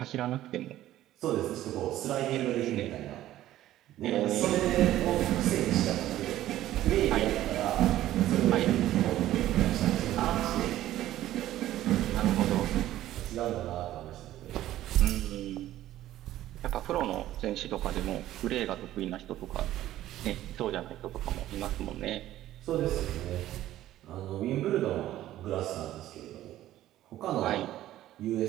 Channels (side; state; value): left; quieter; 13.9 dB